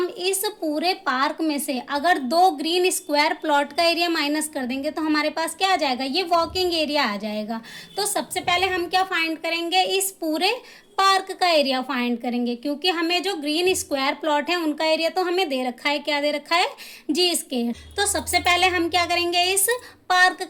इस पूरे पार्क में से अगर 2 ग्रीन स्क्वायर प्लॉट का एरिया माइनस कर देंगे तो हमारे पास क्या आ जाएगा, ये वॉकिंग एरिया आ जाएगा। तो सबसे पहले हम क्या फाइंड करेंगे, इस पूरे पार्क का एरिया फाइंड करेंगे, क्योंकि हमें जो ग्रीन स्क्वायर प्लॉट है उनका एरिया तो हमें दे रखा है, क्या दे रखा है, जी स्क्वायर। तो सबसे पहले हम क्या करेंगे, इस पार्क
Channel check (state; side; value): identical; both; correlation 1.00